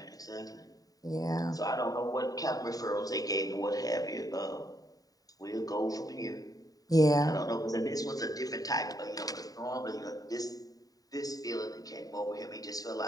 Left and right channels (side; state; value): right; late; 0.18 ms